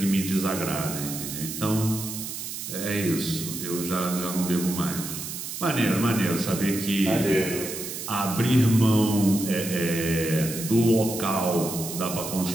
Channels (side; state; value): right; noise; hiss, 7 dB below the sound